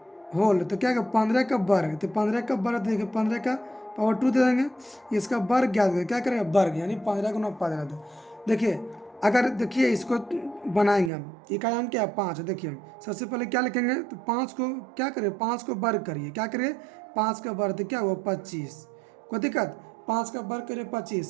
होल, तो क्या 15 का वर्ग, तो 15 का वर्ग देखिए 15 का पावर 2 दे देंगे, इसका वर्ग ज्ञात करें, क्या करेंगे वर्ग, यानी 15 गुना 15। देखिए अगर देखिए इसको बनाएंगे हम, इकाई अंक क्या 5 है, देखिए सबसे पहले क्या लिखेंगे, तो 5 को क्या करें, 5 को वर्ग करिए, क्या करिए 5 का वर्ग, तो क्या हुआ 25, कोई दिक्कत, 5 का वर्ग करिए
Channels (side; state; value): left; drops out; at 11.1 s